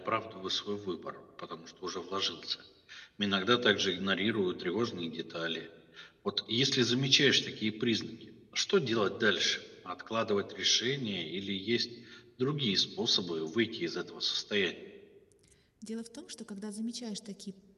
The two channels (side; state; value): both; identical; correlation 1.00